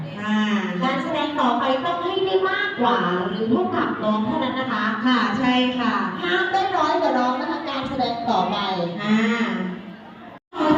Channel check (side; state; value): both; identical; correlation 1.00